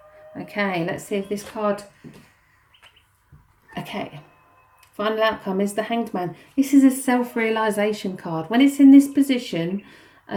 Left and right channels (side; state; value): both; identical; correlation 1.00